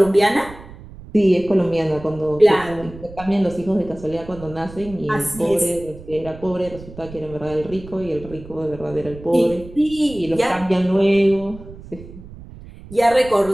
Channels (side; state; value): right; noise; rumble, 17 dB below the sound